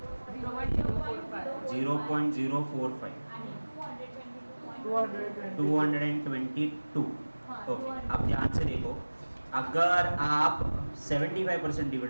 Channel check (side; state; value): both; inverted; correlation -1.00